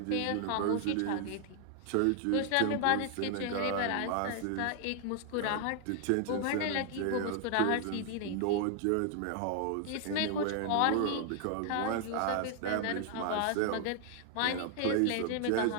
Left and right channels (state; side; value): different; both; correlation 0.00